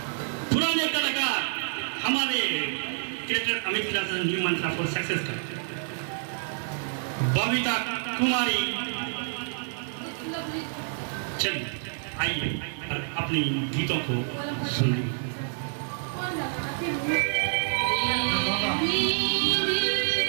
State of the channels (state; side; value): silent; left; 59 dB below the other